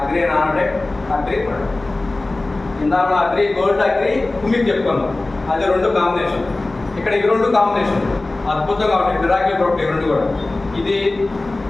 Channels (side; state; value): right; quieter; 3.0 dB